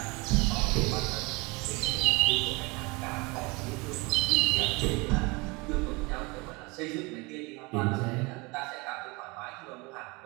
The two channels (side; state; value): left; quieter; 26.3 dB